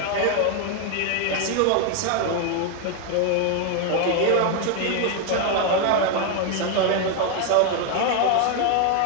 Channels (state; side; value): different; both; correlation 0.01